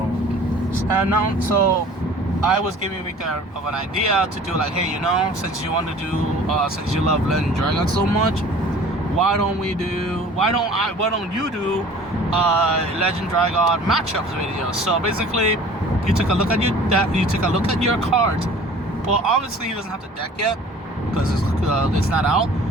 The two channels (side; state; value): both; normal; correlation 0.47